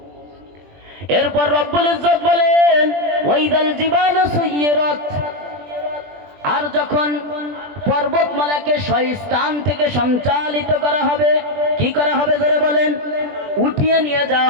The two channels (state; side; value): late; left; 20 ms